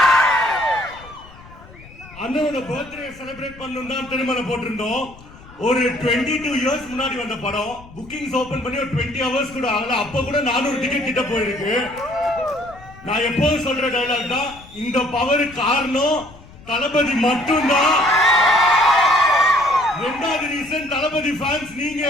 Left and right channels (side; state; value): left; noise; rumble, 21 dB below the sound